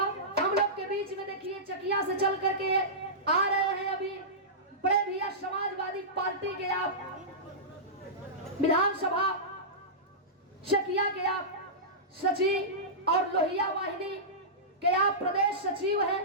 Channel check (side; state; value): both; normal; correlation -0.17